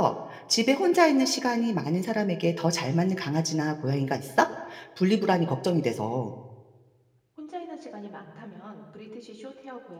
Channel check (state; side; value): identical; both; correlation 1.00